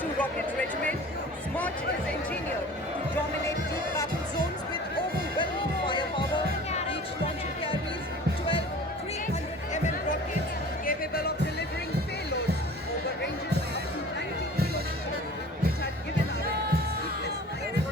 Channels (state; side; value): normal; both; correlation 0.44